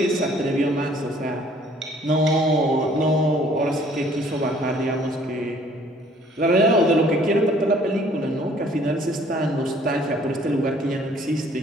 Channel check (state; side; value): normal; both; correlation 0.58